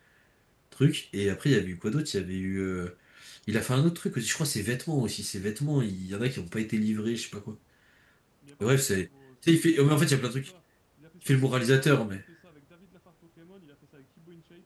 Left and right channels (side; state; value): both; identical; correlation 1.00